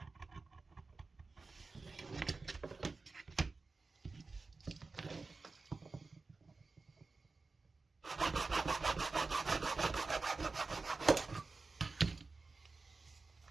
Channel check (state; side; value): quieter; left; 3.9 dB